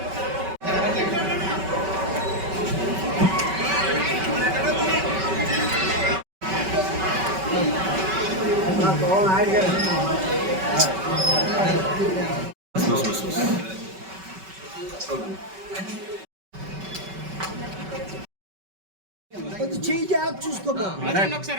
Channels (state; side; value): late; left; 5.2 ms